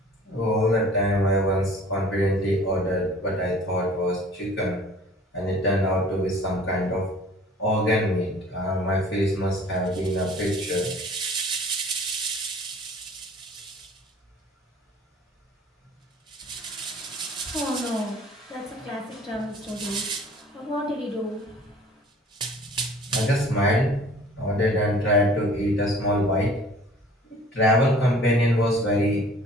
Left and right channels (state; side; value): normal; both; correlation 0.50